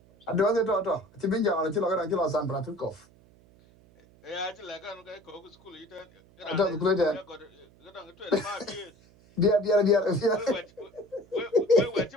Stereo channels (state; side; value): noise; right; hum, 28 dB below the sound